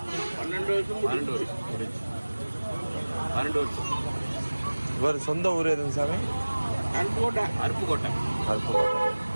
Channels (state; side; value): inverted; both; correlation -1.00